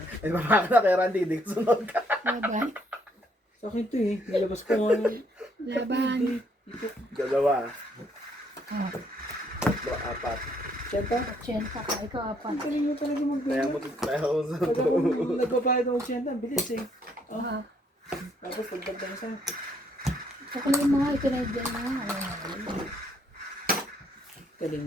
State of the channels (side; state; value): both; normal; correlation 0.69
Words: Ay, baka na kay Randy, hindi ko sunod ka. laban, Sa akin to eh. Nilabas ko nga. laban. Dalawa, Oh, tatlo, apat. Siyenta? Chenta ka, ikaw apat. Ang galing mo talaga Kaya mag-bigay. mo kaya ako sa Pag ako nagbabayad ako siyenta, bilis eh. Ah, Tapos pagdagdag sa Kukunin mo nga, ito na dyan na. Ayun. galing